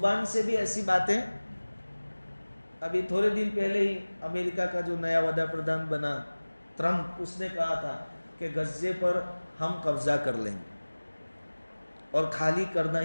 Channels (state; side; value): inverted; both; correlation -1.00